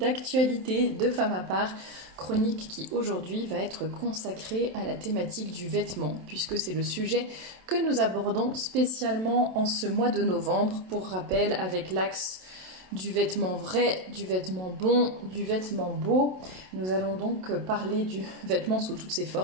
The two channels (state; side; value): late; left; 27 ms